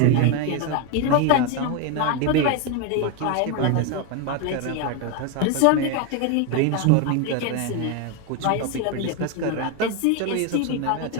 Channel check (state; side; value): different; both; correlation 0.02